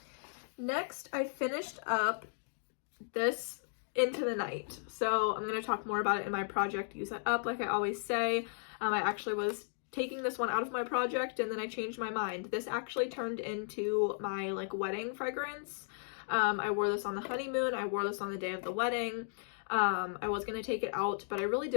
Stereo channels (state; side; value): silent; right; digital silence